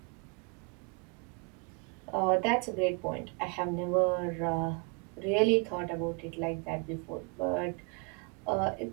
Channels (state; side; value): quieter; left; 33.1 dB